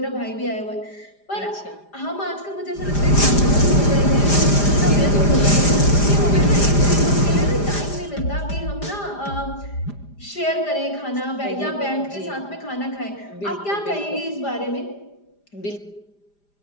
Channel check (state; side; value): late; right; 4.9 ms